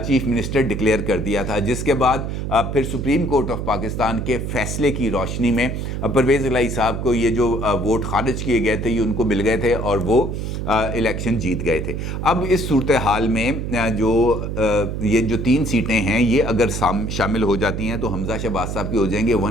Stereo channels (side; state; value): right; noise; hum, 4 dB below the sound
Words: मिनिस्टर डिक्लेयर कर दिया था। जिसके बाद फिर सुप्रीम कोर्ट ऑफ पाकिस्तान के फ़ैसले की रोशनी में परवेज़ इलाही साहब को ये जो वोट खारिज किए गए थे ये उनको मिल गए थे और वो इलेक्शन जीत गए थे। अब इस सूरत हाल में ये जो 3 सीटें हैं ये अगर शामिल हो जाती हैं तो हमजा शहबाज साहब की हो जाएंगे